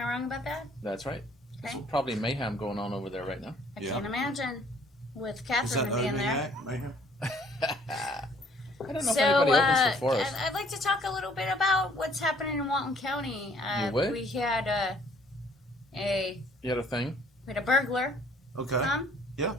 wrong about that? That's right. Okay. There's probably mayhem going on over there right now. I Yeah. can't imagine with Is Catherine that being there. Mayhem? I don't know So, if anybody opens for Forrest. I'd like to talk a little bit about what's happening in Walton County. You would? We had You had a thing? we had a burglar Okay. come. Yeah.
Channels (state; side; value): normal; both; correlation 0.60